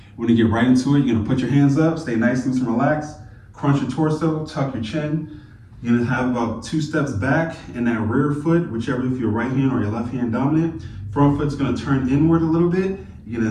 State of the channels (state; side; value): identical; both; correlation 1.00